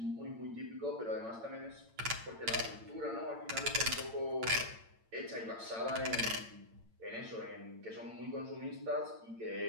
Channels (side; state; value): left; late; 8.8 ms